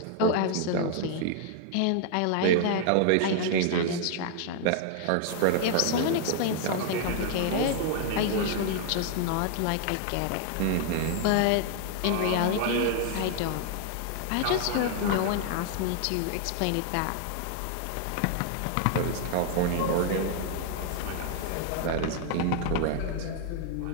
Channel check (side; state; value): both; different; correlation 0.00